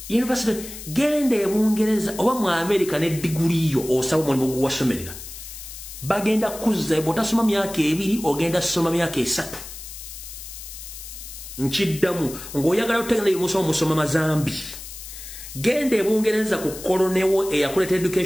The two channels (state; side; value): noise; left; hiss, 12 dB below the sound